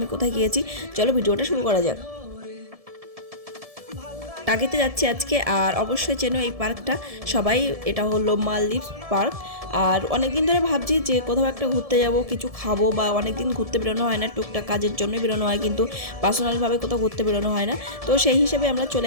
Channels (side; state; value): left; late; 1.7 ms